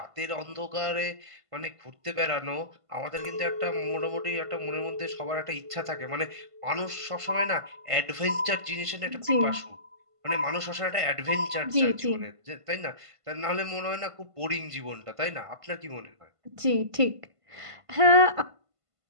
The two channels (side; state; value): left; late; 1.5 ms